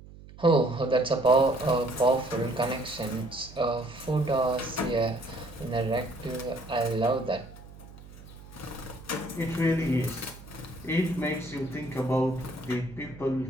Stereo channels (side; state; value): right; noise; hum, 18 dB below the sound